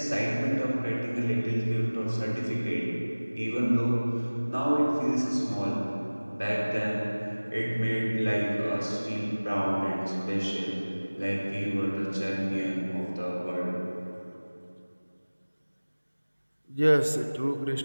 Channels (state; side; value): inverted; both; correlation -1.00